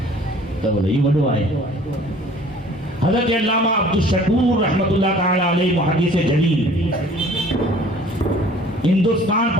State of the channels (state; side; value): normal; both; correlation 0.51